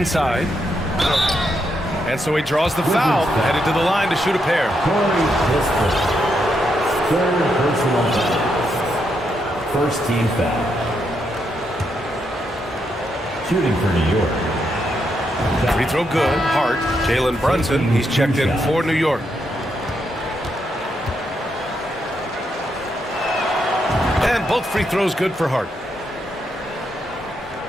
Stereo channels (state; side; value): normal; both; correlation 0.80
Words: And so he draws the foul, headed to the line to shoot a pair. Third personal foul. First team foul. Shooting for New York. Free throw good. Hart. Jalen Brunson. He's checked in for New York. And both free throws good for Hart.